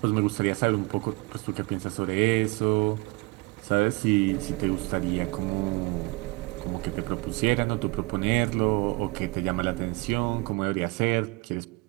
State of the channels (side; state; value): left; quieter; 25.8 dB